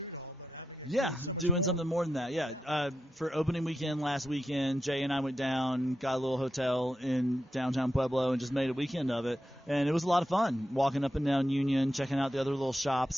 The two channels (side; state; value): both; normal; correlation 0.87